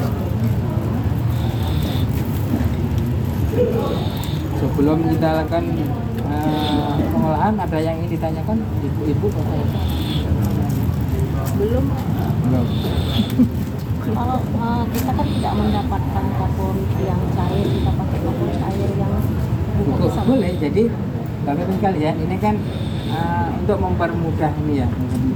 Sebelum kita lakukan pengolahan, ada yang ingin ditanyakan Ibu Bapak ya? Belum. Kalau kita kan tidak mendapatkan kapur yang cair, kita pakai kapur cair yang boleh. Jadi Bapak-Ibu sekalian, ini kan untuk mempermudah ini ya,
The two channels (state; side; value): identical; both; correlation 1.00